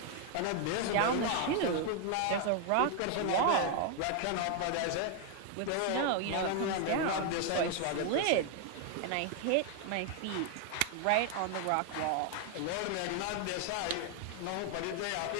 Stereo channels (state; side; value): different; both; correlation 0.00